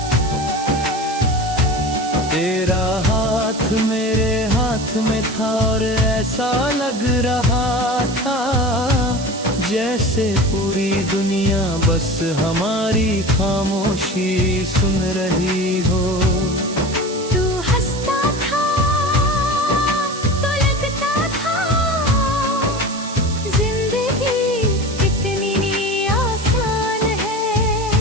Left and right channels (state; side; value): noise; right; hiss, 12 dB below the sound